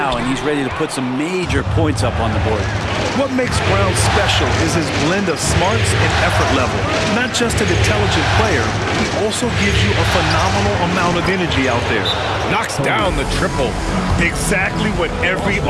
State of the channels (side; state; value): both; identical; correlation 1.00